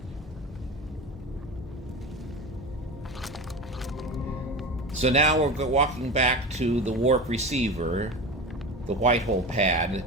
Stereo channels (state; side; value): normal; both; correlation 0.28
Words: So now we're walking back to the warp receiver, the white hole pad,